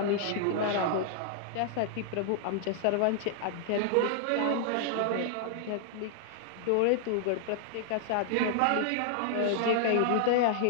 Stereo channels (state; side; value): different; both; correlation -0.01